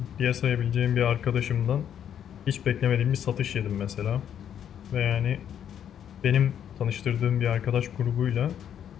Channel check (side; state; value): right; quieter; 9.4 dB